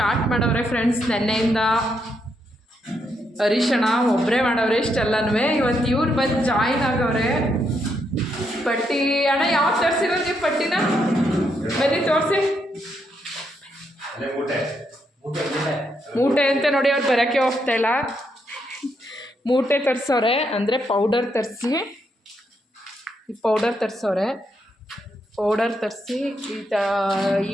ಮಾಡವ್ರೆ ಫ್ರೆಂಡ್ಸ್. ನೆನ್ನೆಯಿಂದ ಹರೀಶಣ್ಣ ಒಬ್ಬರೇ ಮಾಡವ್ರೆ ಇಷ್ಟೆಲ್ಲನೂ. ಇವತ್ತು ಇವ್ರು ಬಂದು ಜಾಯಿನ್ ಆಗವ್ರೆ. ಪಟ್ಟಿ ಅಣ್ಣ ಯಾವ್ದು ತರಿಸಿರೋದು ನೀವು ಪಟ್ಟಿನ? ಬನ್ನಿ ತೋರಿಸಿ. ಮೂಟೆ ಅಂತ ನೋಡಿ, ಅವ್ರು ಬರೋಕ್ಕೆ ಹೋಗ್ತಾಯಿಲ್ಲ. ಮೂಟೆ ತರಿಸವ್ರೆ, ಅಂದರೆ ಪೌಡರ್ ತರಿಸಿ, ಈ ಪೌಡರ್ ತರಿಸವ್ರೆ. ಪೌಡರ್ ತರಿಸಿ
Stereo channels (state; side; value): normal; both; correlation 0.78